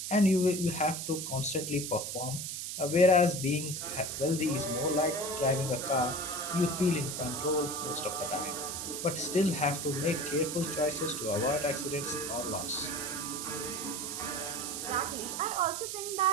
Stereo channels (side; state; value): right; noise; hiss, 5 dB below the sound